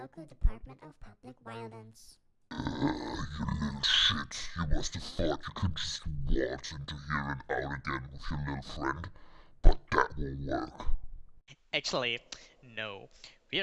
Department of Public Violence. You little shit. You must have thought you could just waltz into here and out again with your little friend, but that won't work. Actually, no. We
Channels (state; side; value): identical; both; correlation 1.00